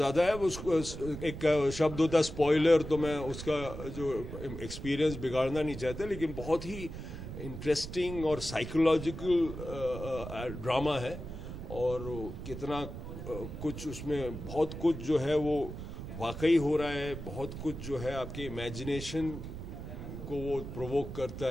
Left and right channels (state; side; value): noise; right; rumble, 9 dB below the sound